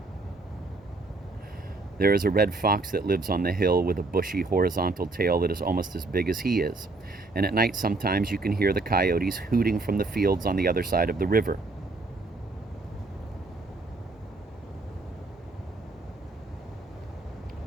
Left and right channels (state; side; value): quieter; left; 3.3 dB